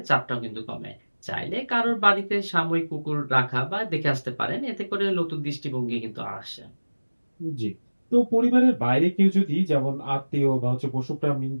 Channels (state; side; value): inverted; both; correlation -1.00